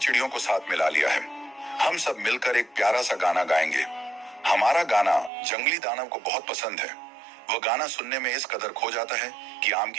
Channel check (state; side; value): drops out; left; at 5.3 s